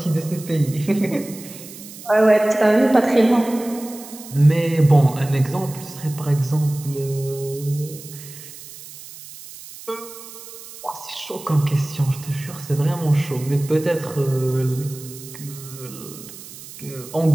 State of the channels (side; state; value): right; noise; hiss, 16 dB below the sound